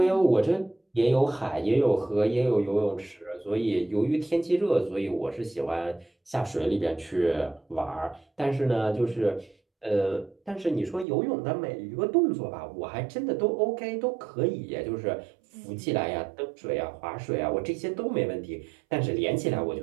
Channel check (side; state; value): left; drops out; at 11.1 s